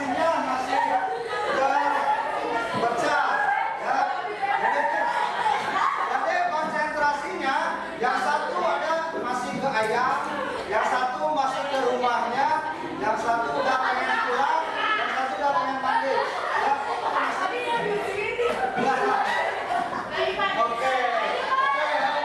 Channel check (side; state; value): both; identical; correlation 1.00